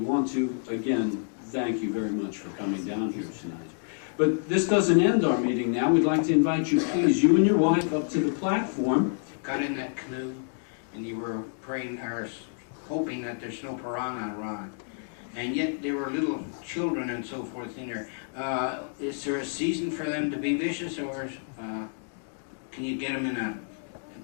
to, again, thank you very much for coming down here tonight. But this doesn't end our meeting now. We'd like to invite you, please, you and your wife, up to the platform. Got in that canoe and you were praying or hoping that there's no piranha around. And yet there were little children and so forth in there. Is there a season for them to be vicious, or can you get them in a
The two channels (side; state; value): right; silent; digital silence